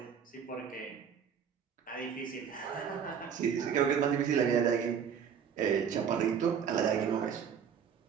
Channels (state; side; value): quieter; left; 7.5 dB